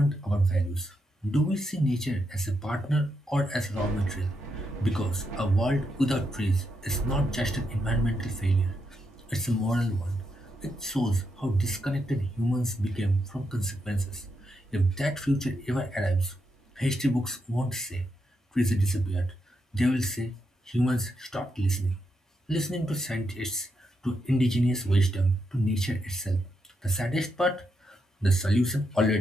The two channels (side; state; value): both; normal; correlation 0.82